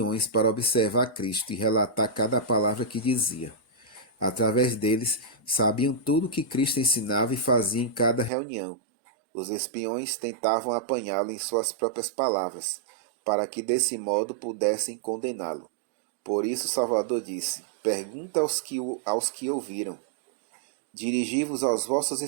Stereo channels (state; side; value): drops out; left; at 8.3 s